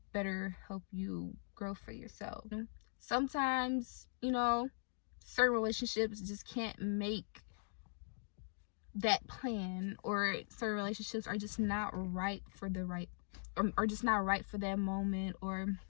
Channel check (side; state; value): right; silent; digital silence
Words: better help you grow for yourself. Sometimes, certain relationships just can't make that plan, or certain relationships are just not right for or just not right for that moment, or